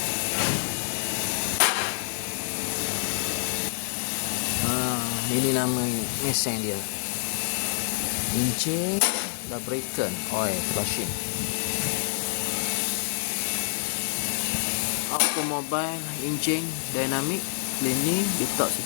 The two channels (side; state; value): right; silent; digital silence